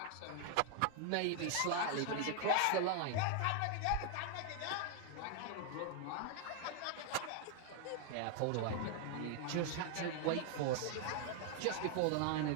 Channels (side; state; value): both; different; correlation 0.00